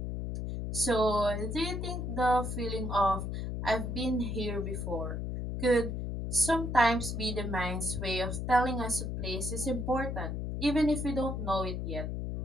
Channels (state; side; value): noise; left; hum, 3 dB below the sound